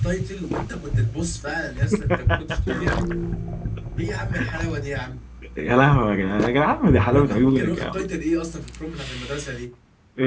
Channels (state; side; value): identical; both; correlation 1.00